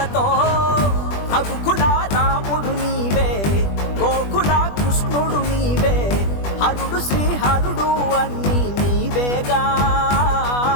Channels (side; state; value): right; late; 20 ms